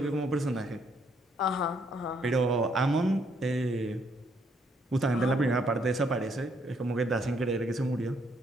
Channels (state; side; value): normal; both; correlation 0.70